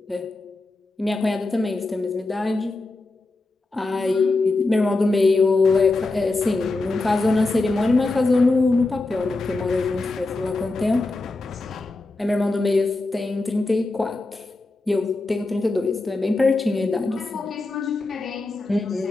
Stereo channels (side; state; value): right; quieter; 3.2 dB